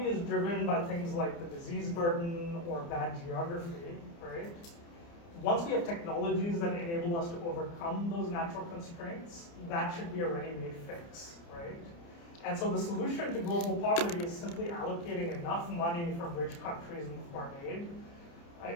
is driven by things like the disease burden or bad geography, right? Once we have technologies that enable us to overcome those natural constraints, that should be a ready-made fix, right? And so the solution to global poverty is simply allocating enough money from rich countries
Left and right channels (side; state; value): right; late; 29 ms